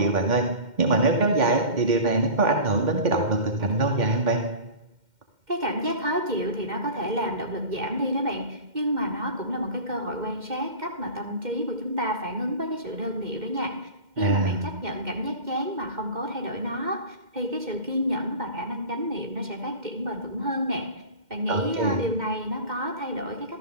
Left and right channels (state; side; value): late; left; 2.1 ms